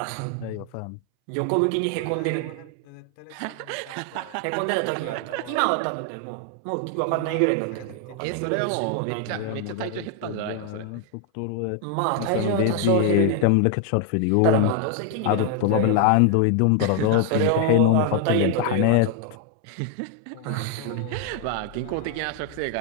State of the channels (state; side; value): different; both; correlation 0.01